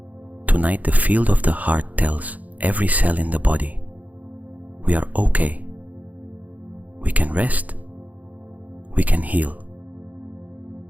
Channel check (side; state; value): left; late; 0.077 ms